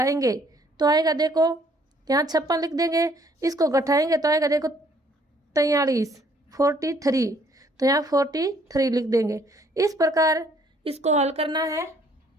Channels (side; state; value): both; normal; correlation 0.63